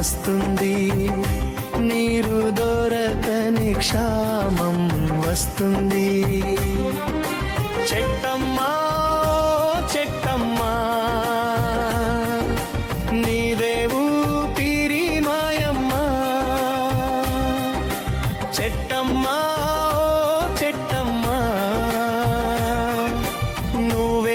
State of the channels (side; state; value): both; identical; correlation 1.00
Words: నీరు దొరకని క్షామం వస్తుంది. చెట్టమ్మా చెట్టమ్మా నీదేవు పిరి మాయమ్మా. చెట్టమ్మా చెట్టమ్మా